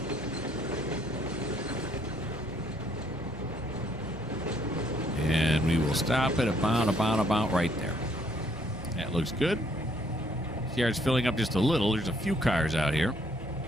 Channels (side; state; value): both; normal; correlation 0.67